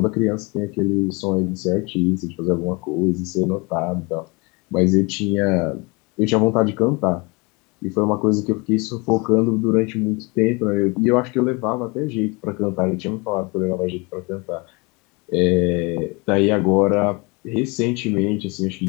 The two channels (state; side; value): quieter; right; 28.0 dB